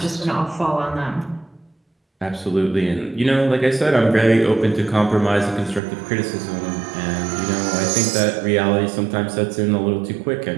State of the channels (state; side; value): drops out; left; at 5.8 s